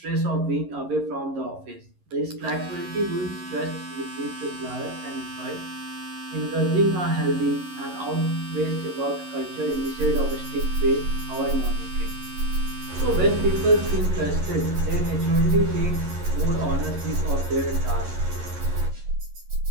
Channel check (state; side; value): late; left; 11 ms